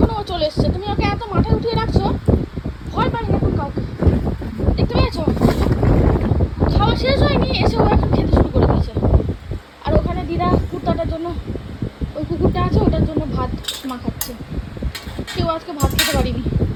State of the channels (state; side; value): identical; both; correlation 1.00